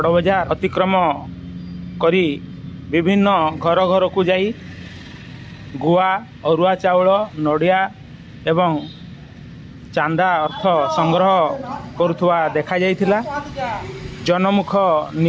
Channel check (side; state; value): both; identical; correlation 1.00